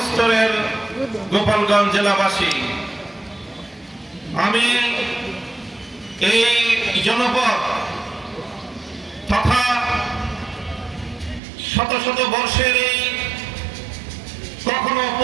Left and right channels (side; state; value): left; drops out; at 11.4 s